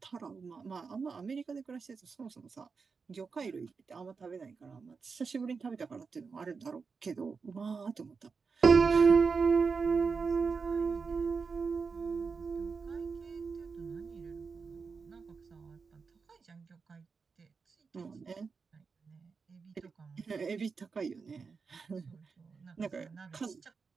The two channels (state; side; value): quieter; left; 5.1 dB